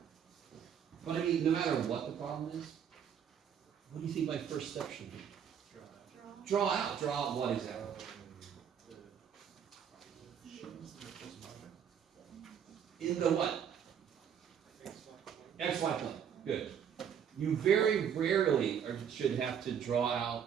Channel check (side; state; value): left; quieter; 8.3 dB